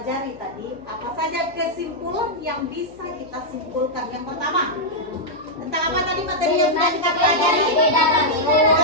tadi. Apa saja kesimpulan yang bisa kita simpulkan? Yang pertama, tentang apa tadi materi yang sudah kita pelajari?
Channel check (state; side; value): noise; left; hum, 23 dB below the sound